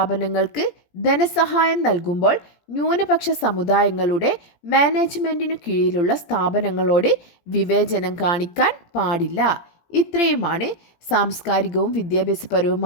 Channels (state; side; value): late; right; 17 ms